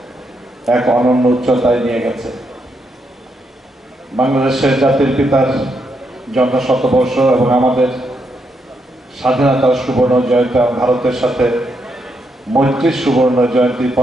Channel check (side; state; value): both; normal; correlation 0.79